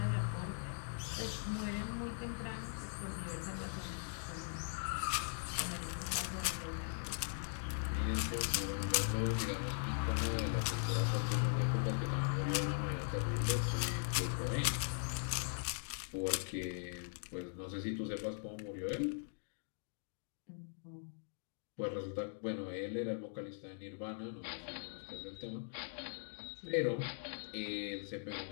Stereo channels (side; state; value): right; silent; digital silence